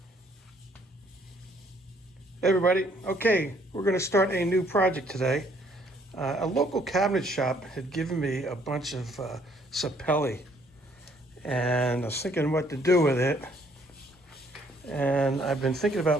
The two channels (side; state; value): both; normal; correlation 0.65